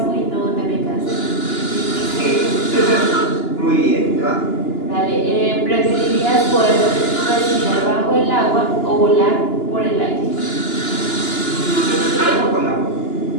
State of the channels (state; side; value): late; right; 2.9 ms